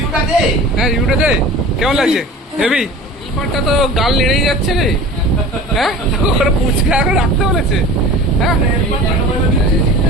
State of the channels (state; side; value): normal; both; correlation 0.39